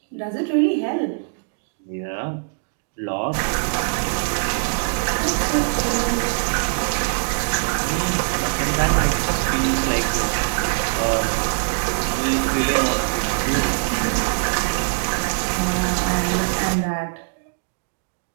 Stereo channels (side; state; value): left; silent; digital silence